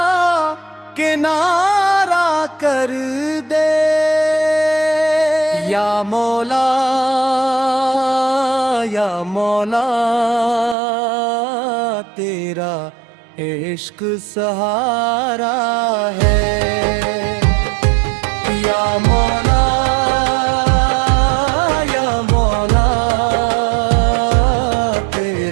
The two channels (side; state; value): left; drops out; at 10.8 s